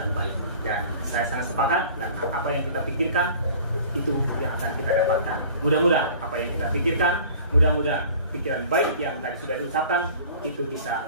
baik, dan saya sangat sepakat, dan apa yang kita pikirkan itu yang akan kita dapatkan. Mudah-mudahan apa yang kita pikirkan, mudah-mudahan pikiran baik yang tadi sudah diucapkan itu bisa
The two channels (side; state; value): both; inverted; correlation -0.46